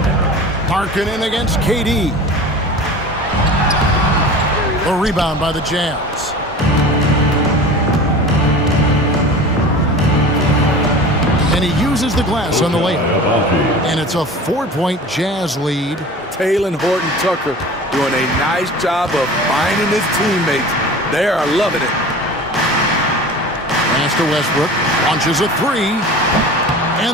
Markkanen against KD. A rebound by the Jazz. And he uses the glass on the layup. And it's a 4-point Jazz lead. Taylor Horton Tucker doing a nice job of finding his teammates. They are loving it. Pass to Westbrook. Launches a three.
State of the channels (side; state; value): both; normal; correlation 0.37